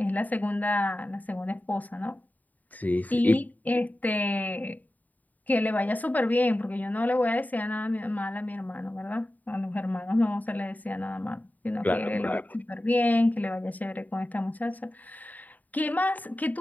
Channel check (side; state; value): right; late; 0.079 ms